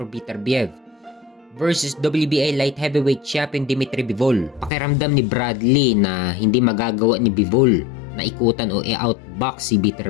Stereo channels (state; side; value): drops out; right; at 4.7 s